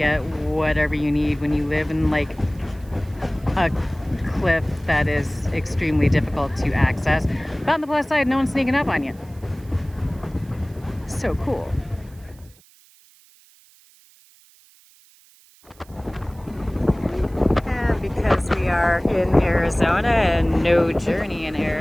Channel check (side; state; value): right; noise; hiss, 28 dB below the sound